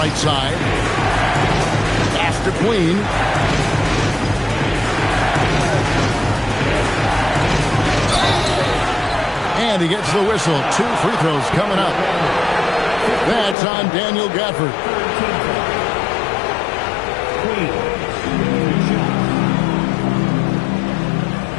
side. Pass to Queen. And he gets the whistle. 2 free throws coming up. That's on Daniel Gafford.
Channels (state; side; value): drops out; right; at 13.6 s